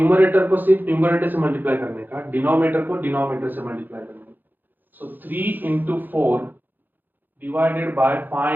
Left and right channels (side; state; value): left; late; 0.088 ms